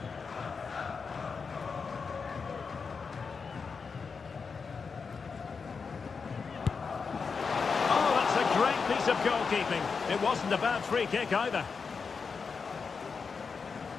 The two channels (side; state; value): right; quieter; 5.3 dB